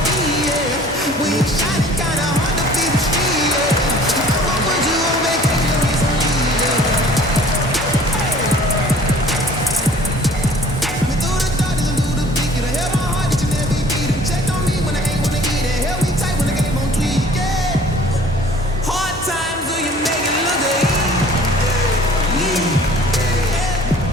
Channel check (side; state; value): both; normal; correlation 0.51